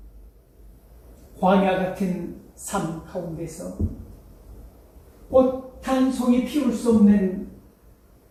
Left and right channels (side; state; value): both; identical; correlation 1.00